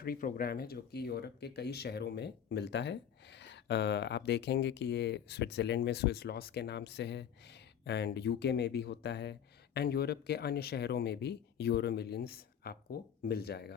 प्रोग्राम है जो कि यूरोप के कई शहरों में मिलता है। आप देखेंगे कि ये स्विट्ज़रलैंड में स्विस लॉस के नाम से है, एंड यूके में भी होता है, एंड यूरोप के अन्य शहरों में भी यूरो मिलियंस आपको मिल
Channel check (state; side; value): quieter; right; 8.8 dB